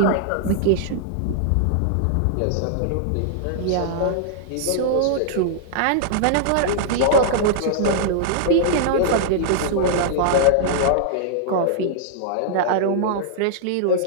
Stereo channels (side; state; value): both; different; correlation -0.02